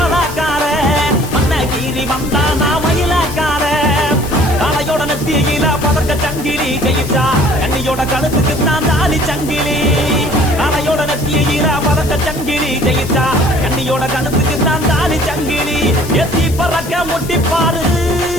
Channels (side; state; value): left; noise; hiss, 14 dB below the sound